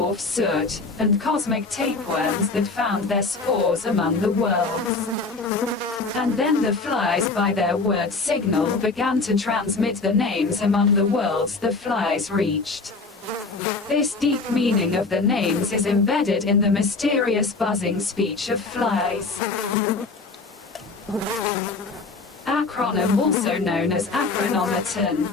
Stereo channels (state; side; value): quieter; right; 3.9 dB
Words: soot, and cosmic tapeworms that found their spores among the worlds. And then the flies by their word signal began to transmit the names among the worlds the flies reached. This deep meaning of the names is embedded in the mysterious buzzing speech of flies. Acronym, also known as acronometon,